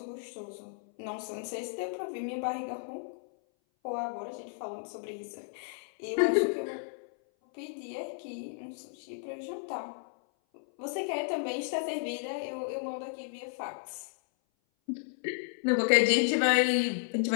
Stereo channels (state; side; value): silent; right; 56 dB below the other